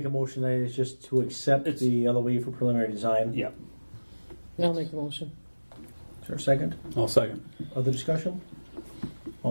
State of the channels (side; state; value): both; inverted; correlation -1.00